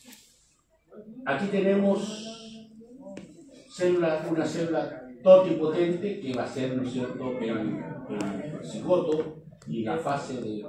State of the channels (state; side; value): identical; both; correlation 1.00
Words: aquí tenemos una célula totipotente que va a ser, ¿no es cierto?, el cigoto y la fase de